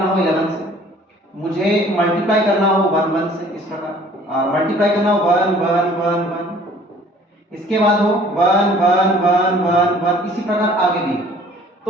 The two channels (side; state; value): both; normal; correlation 0.53